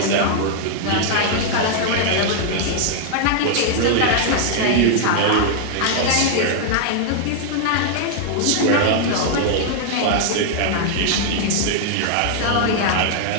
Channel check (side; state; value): both; different; correlation -0.01